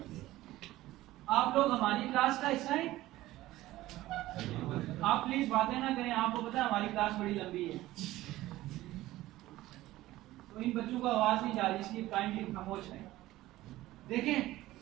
आप लोग हमारी क्लास का हिस्सा हैं। आप प्लीज बातें ना करें, आपको पता है हमारी क्लास बड़ी लंबी है, तो इन बच्चों को आवाज नहीं जा रही, इसलिए काइंडली खामोश है। देखें,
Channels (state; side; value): quieter; left; 16.4 dB